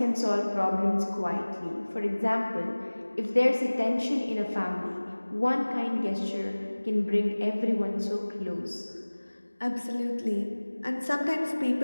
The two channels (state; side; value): inverted; both; correlation -1.00